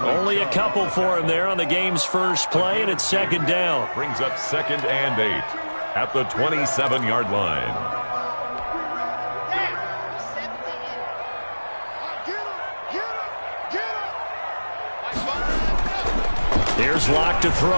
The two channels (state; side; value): inverted; both; correlation -1.00